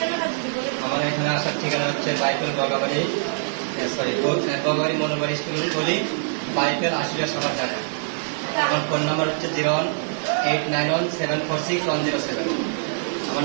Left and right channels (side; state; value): left; silent; digital silence